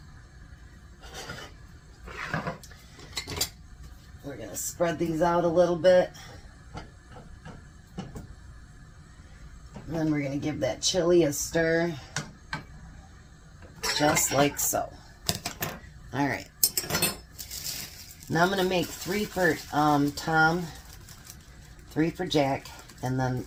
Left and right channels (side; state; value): both; identical; correlation 1.00